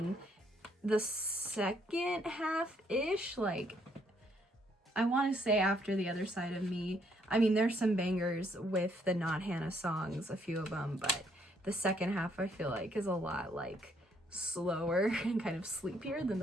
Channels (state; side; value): normal; both; correlation 0.69